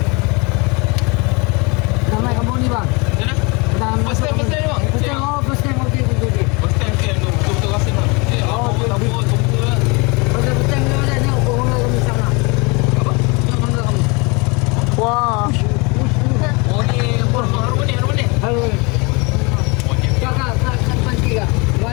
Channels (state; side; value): quieter; right; 28.6 dB